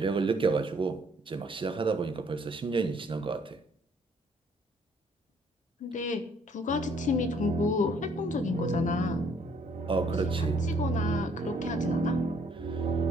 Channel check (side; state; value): both; normal; correlation 0.63